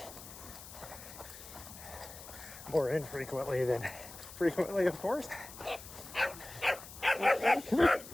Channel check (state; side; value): noise; left; hiss, 15 dB below the sound